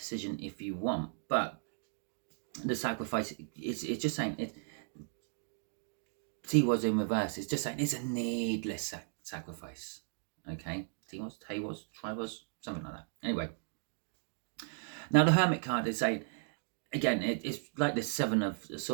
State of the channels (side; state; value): left; silent; 54 dB below the other